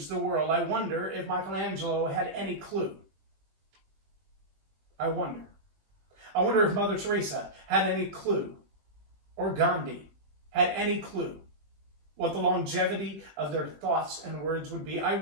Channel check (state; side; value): late; left; 20 ms